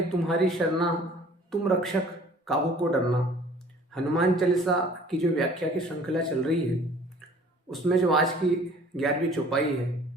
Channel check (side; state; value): both; normal; correlation 0.51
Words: तुम्हारी शरणा, तुम रक्षक काहू को डरना। हनुमान चालीसा की जो व्याख्या की श्रृंखला चल रही है उसमें जो आज की 11वीं चौपाई है